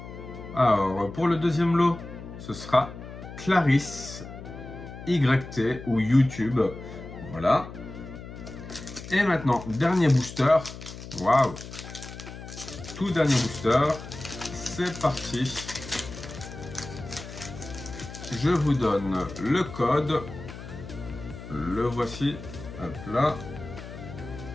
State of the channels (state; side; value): noise; left; hum, 12 dB below the sound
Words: Alors, pour le deuxième lot, ce sera Clarisse, YT ou YouTube. Voilà. Et maintenant, dernier booster. Waouh! Tout dernier booster. C'est parti. Je vous donne le code. Le voici. Hop là.